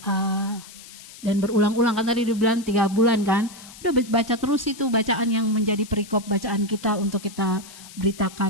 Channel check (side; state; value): left; noise; hiss, 18 dB below the sound